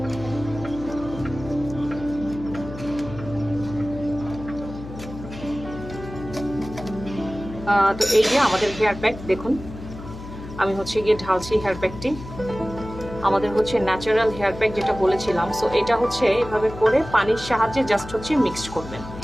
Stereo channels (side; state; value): left; noise; hum, 12 dB below the sound